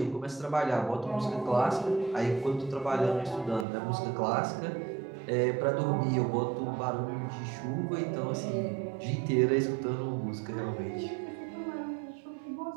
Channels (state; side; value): drops out; left; at 3.7 s